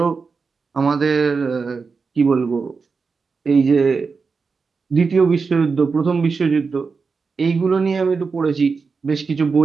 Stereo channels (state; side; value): quieter; left; 4.9 dB